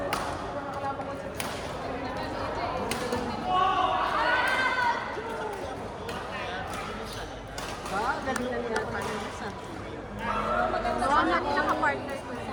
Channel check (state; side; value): identical; both; correlation 1.00